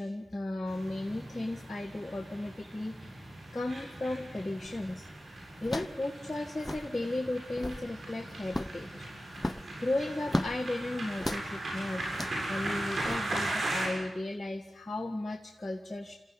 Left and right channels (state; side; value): normal; both; correlation 0.94